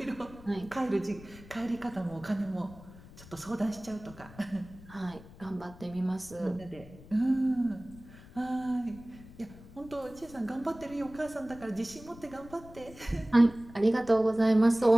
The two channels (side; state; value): left; noise; rumble, 19 dB below the sound